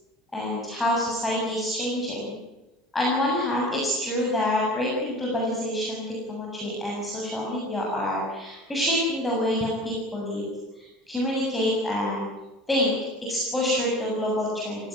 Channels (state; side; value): normal; both; correlation 0.39